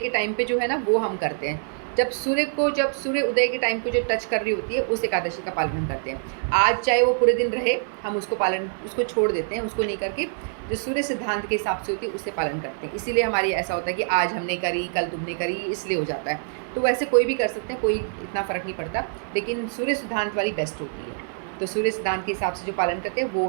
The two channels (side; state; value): left; silent; 62 dB below the other